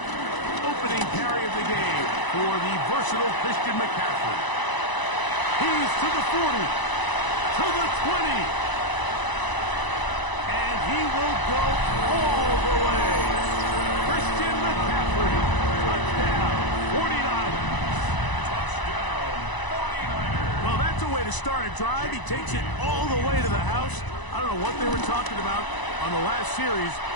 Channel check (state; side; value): late; right; 1.0 ms